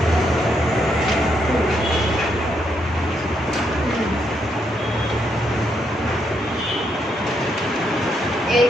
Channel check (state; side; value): normal; both; correlation 0.77